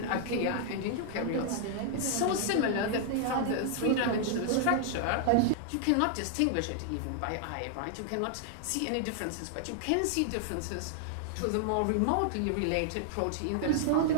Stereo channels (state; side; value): different; both; correlation 0.00